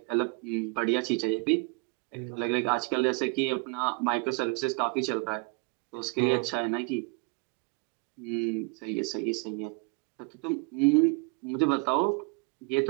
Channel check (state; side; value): quieter; left; 30.7 dB